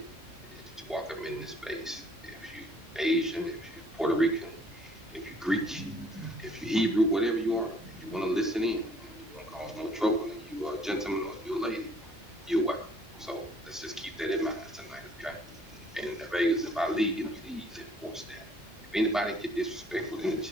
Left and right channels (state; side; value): normal; both; correlation 0.59